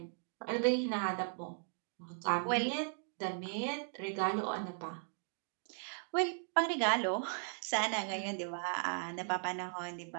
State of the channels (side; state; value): left; silent; 53 dB below the other